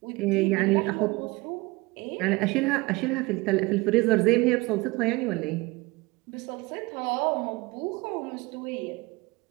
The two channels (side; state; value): left; quieter; 23.3 dB